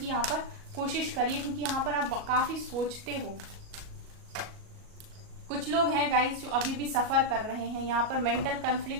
यहाँ पर कोशिश करिए, क्योंकि यहाँ पर आप काफी सोचते हो। कुछ लोग हैं गाइस जो अभी भी सफर कर रहे हैं, यहाँ पर मेंटल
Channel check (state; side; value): late; left; 37 ms